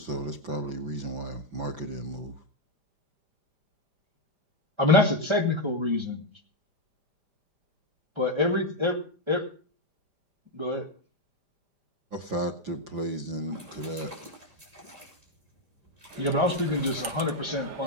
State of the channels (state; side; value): late; left; 5.0 ms